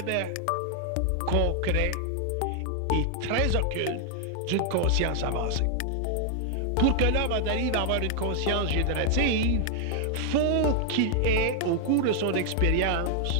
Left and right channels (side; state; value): both; different; correlation 0.00